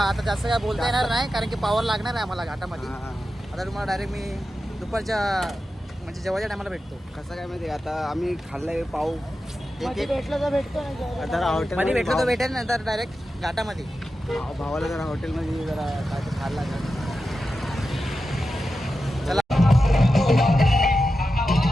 जास्त काय बोलता येणार नाही कारण की पावर लागणार आहे आम्हाला घाटामध्ये. आता तुम्हाला डायरेक्ट मी दुपारच्या म्हणजे जेवायच्या टायमाला भेटतो. कसं काय माहिती. आता आम्ही खाल्लाय पाव. भेटलं तर भेटतो मध्ये भेटलं तर भेटेल ना. तर डायरेक्ट घाटामध्ये भावाला जरा हॉटेलमध्ये जरा काय खाल्ला.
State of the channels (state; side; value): normal; both; correlation 0.91